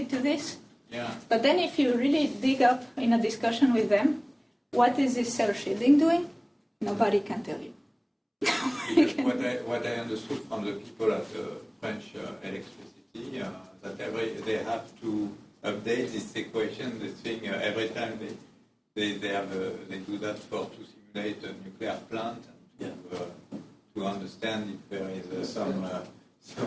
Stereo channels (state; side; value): identical; both; correlation 1.00